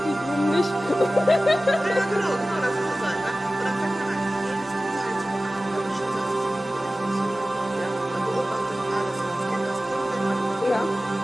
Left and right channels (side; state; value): both; normal; correlation 0.96